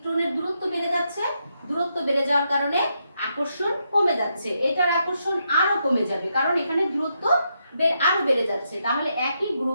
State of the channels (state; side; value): inverted; both; correlation -0.81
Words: দূরত্ব বেড়ে যাচ্ছে, দূরত্ব বেড়ে যাওয়ার কারণে আকর্ষণ কমে যাচ্ছে, এটার আকর্ষণ আরো কমে যাবে কারণ এখানে দূরত্ব আরো বেড়ে যাচ্ছে। তাহলে একই